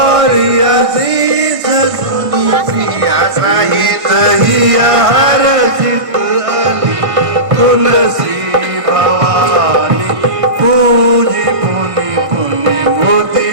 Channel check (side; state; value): left; late; 1.5 ms